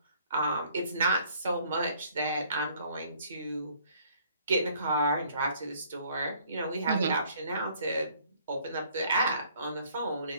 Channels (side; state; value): both; inverted; correlation -0.60